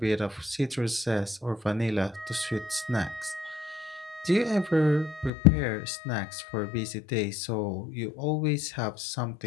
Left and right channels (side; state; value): right; drops out; at 5.3 s